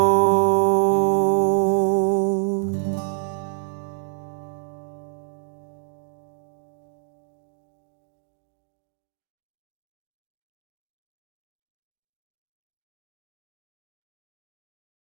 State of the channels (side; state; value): left; silent; digital silence